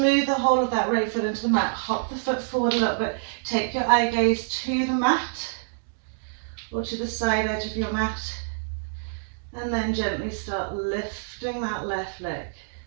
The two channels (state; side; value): silent; left; digital silence